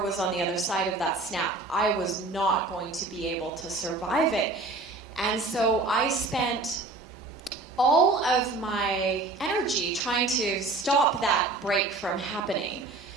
on the other side of that snap, I was not going to be able to survive it. And so I spent all of my energy trying to stop that break from happening.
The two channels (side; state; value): left; quieter; 3.3 dB